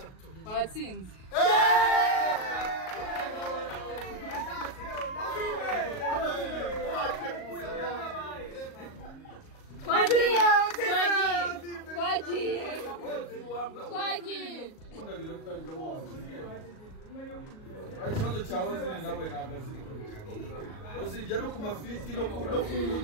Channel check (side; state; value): right; late; 38 ms